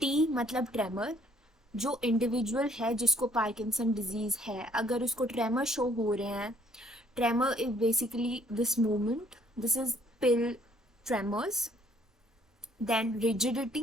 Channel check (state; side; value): normal; both; correlation 0.63